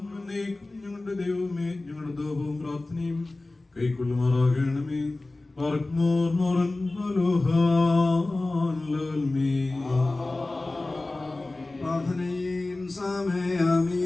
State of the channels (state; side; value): quieter; right; 3.0 dB